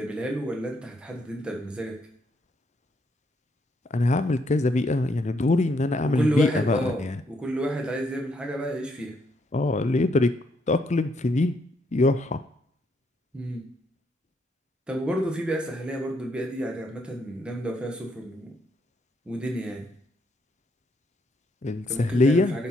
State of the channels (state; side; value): normal; both; correlation 0.73